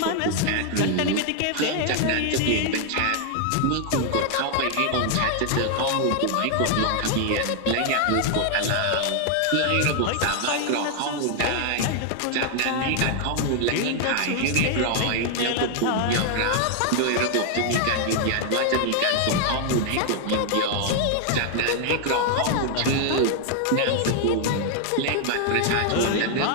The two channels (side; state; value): both; different; correlation 0.00